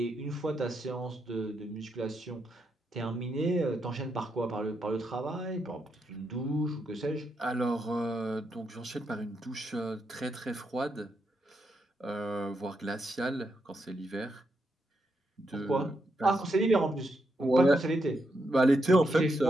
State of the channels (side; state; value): both; normal; correlation 0.81